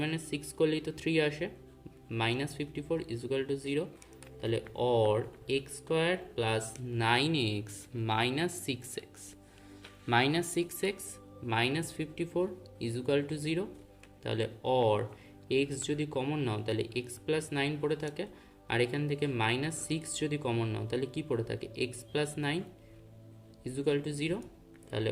মাইনাস 6 করলেই তো 3 আসে, মাইনাস 54 ইজুকাল টু 0, তাহলে or X square plus 9x minus 6x minus 6x minus 54 equal to 0, তাহলে অর এক্স যদি কমন নাও তাহলে এক্স প্লাস 9 পড়ে থাকে, আর এখান থেকে মাইনাস 6 যদি কমন নাও তাহলে কি পড়ে থাকে এক্স প্লাস 9 ইজুকাল টু 0, তাহলে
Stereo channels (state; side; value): identical; both; correlation 1.00